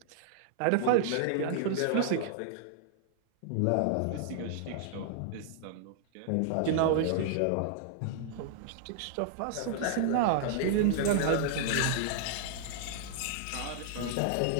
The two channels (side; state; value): both; different; correlation -0.01